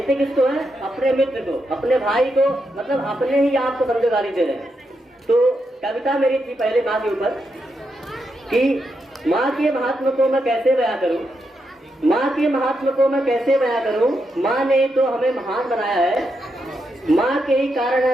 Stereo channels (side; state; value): both; normal; correlation 0.83